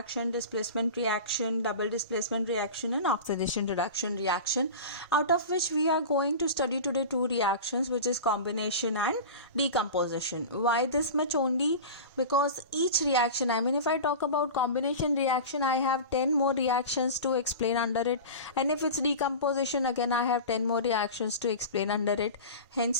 displacement reaction, double displacement reaction, and oxidation reduction reaction, out of which we are going to study today 2 reactions, which is combination and decomposition. Why this much only? Because each reaction, if I talk about combination reaction, I have 10 more reactions to explain under it, and if it's decomposition, again I have 10 more reactions to explain under it.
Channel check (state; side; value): inverted; both; correlation -0.31